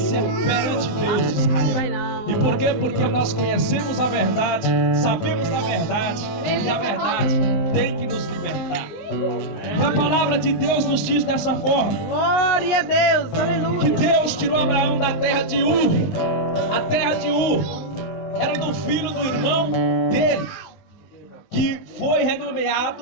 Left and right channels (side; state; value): right; late; 20 ms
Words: perante Deus de Israel. E por quê? Porque nós conhecemos a verdade, sabemos da verdade, e a verdade tem que nos libertar. E a palavra de Deus nos diz dessa forma: Glória a Deus, aleluia. que Deus tirou Abraão da terra de Ur. A terra de Ur era do filho do irmão dele, que foi